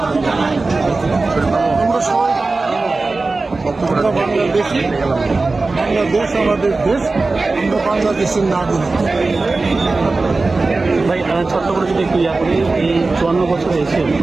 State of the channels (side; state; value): left; quieter; 3.6 dB